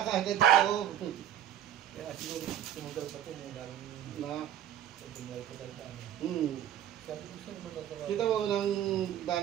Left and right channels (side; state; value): left; quieter; 10.6 dB